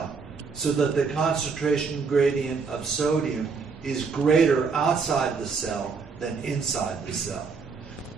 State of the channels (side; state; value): left; quieter; 5.1 dB